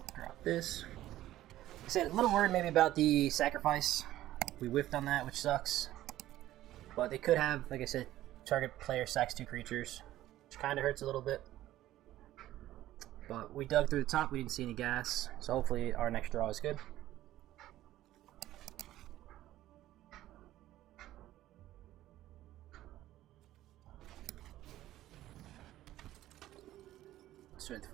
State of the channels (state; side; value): quieter; left; 14.3 dB